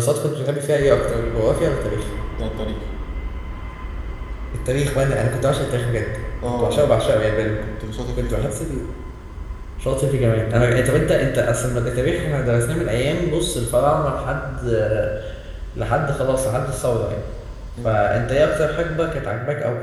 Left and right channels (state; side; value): identical; both; correlation 1.00